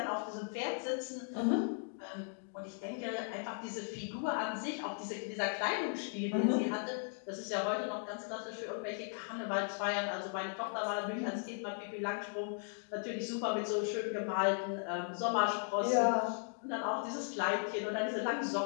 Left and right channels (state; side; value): silent; right; 53 dB below the other